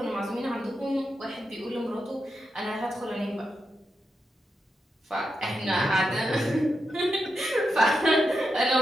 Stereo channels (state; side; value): normal; both; correlation 0.87